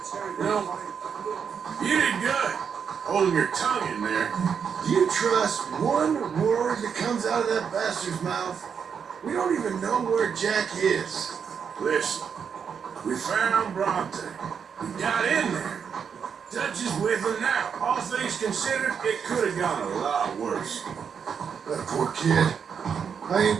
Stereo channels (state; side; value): quieter; left; 6.9 dB